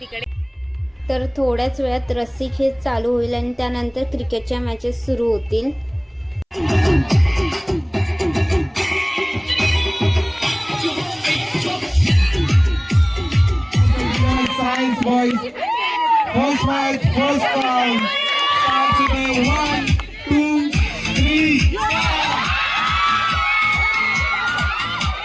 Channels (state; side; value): identical; both; correlation 1.00